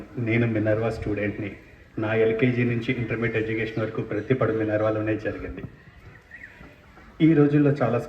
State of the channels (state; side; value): identical; both; correlation 1.00